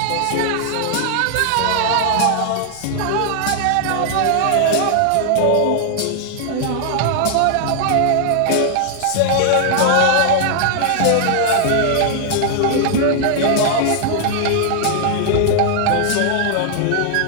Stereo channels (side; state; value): both; different; correlation -0.01